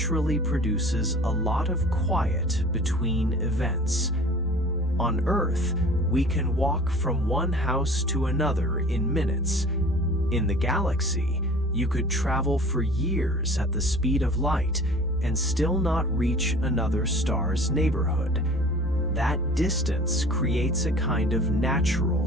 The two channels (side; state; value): both; normal; correlation 0.45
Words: produces a lot of quiet between events. On Earth, we can walk from one house to another in minutes. In the galaxy, you could travel for years at the speed of light and still not reach another star's neighborhood. That distance creates a kind of natural